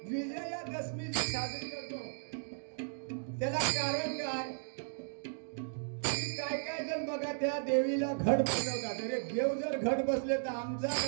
विजयादशमी साजरी करतो. त्याला कारण काय? काय काय जण बघा त्या देवीला घट बसवतात. अरे देव जर घट बसले तर आमचा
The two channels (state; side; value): silent; left; digital silence